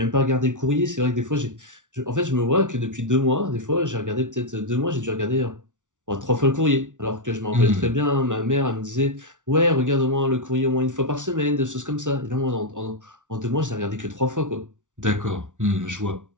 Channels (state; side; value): late; left; 0.87 ms